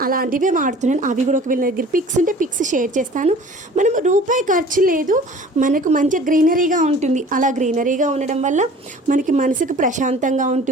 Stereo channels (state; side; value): normal; both; correlation 0.46